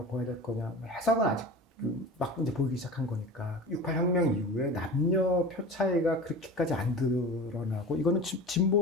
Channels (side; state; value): both; normal; correlation 0.35